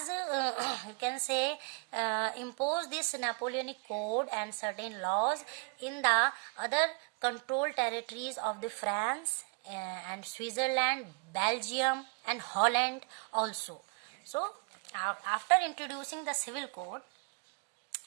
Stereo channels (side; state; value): left; quieter; 37.4 dB